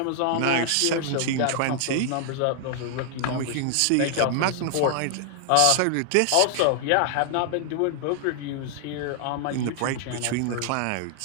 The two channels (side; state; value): both; different; correlation 0.00